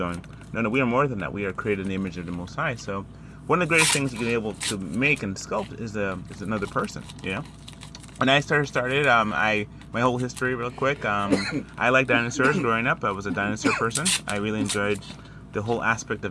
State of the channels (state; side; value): identical; both; correlation 1.00